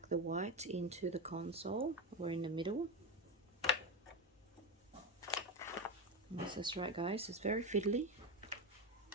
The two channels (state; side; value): normal; both; correlation 0.15